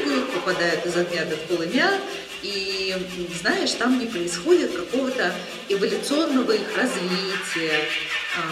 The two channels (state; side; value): identical; both; correlation 1.00